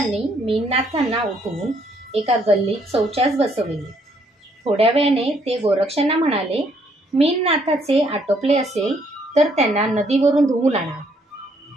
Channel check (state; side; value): normal; both; correlation 0.69